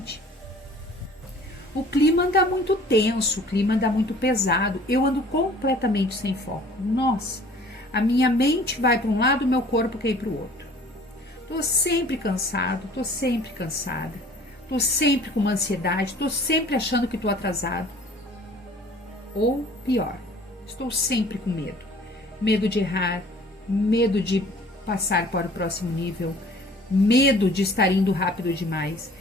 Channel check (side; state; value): both; normal; correlation 0.50